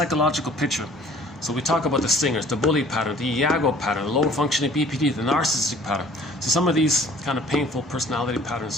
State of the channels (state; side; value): normal; both; correlation 0.52